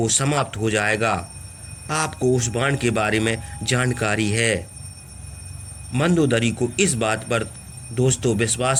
समाप्त हो जाएगा। आपको उस बाण के बारे में जानकारी है। मंदोदरी को इस बात पर दोस्तों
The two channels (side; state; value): both; identical; correlation 1.00